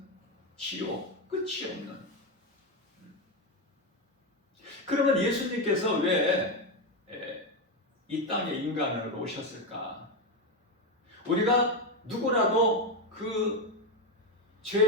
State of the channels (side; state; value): both; normal; correlation 0.10